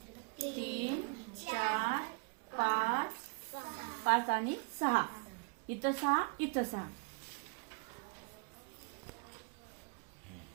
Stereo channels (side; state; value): left; quieter; 34.5 dB